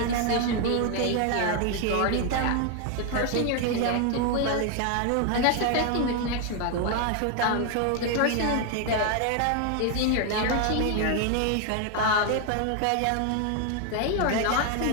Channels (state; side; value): different; both; correlation 0.01